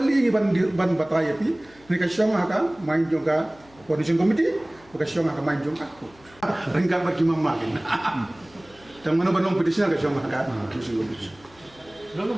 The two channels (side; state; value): left; noise; hum, 27 dB below the sound